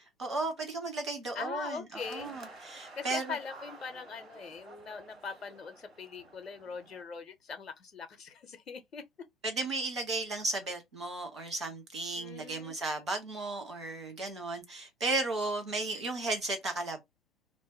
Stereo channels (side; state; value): both; normal; correlation 0.53